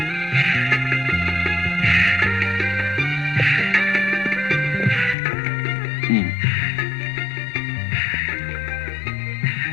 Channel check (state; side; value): drops out; right; at 5.2 s